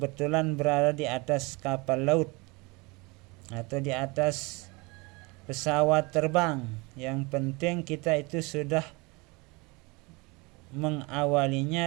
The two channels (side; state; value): left; quieter; 26.6 dB